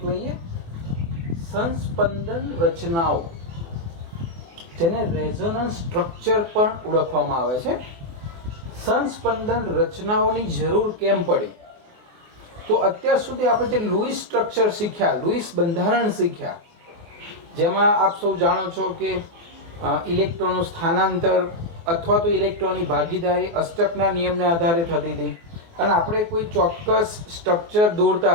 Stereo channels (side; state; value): left; late; 24 ms